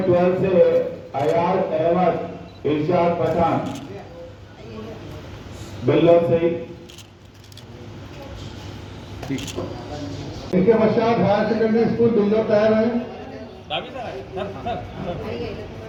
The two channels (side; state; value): both; identical; correlation 1.00